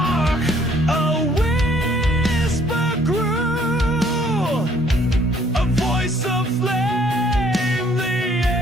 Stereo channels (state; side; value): normal; both; correlation 0.62